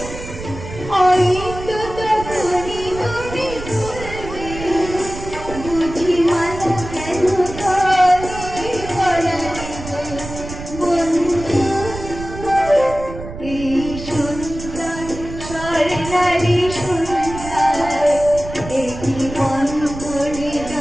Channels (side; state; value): right; noise; rumble, 11 dB below the sound